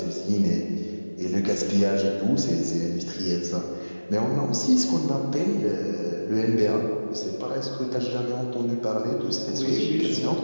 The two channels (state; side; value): inverted; both; correlation -1.00